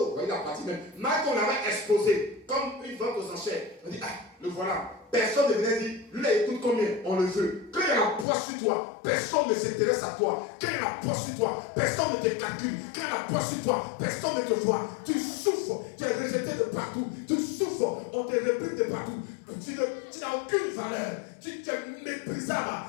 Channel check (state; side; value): drops out; right; at 8.2 s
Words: il a parti même. Marie qu'on avait exposé comme une vente aux enchères. On dit, ah, le voilà. Personne ne venait dire, lui là, écoute combien, on le veut. Quand il y a la poisse sur toi, personne ne s'intéresse à toi. Quand il y a la poisse sur toi, personne ne te calcule. Quand il y a la poisse sur toi, personne ne te voit. Tu souffres, tu es rejeté de partout. Tu souffres, on te réplique de partout. Tu n'as aucune valeur. Tu es méprisable.